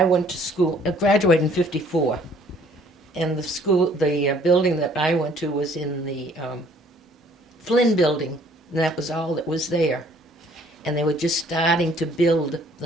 went to school, I graduated in '54, and the building that I went to was in the Flynn building, and that was all that was there. And they were just starting to build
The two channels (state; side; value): normal; both; correlation 0.59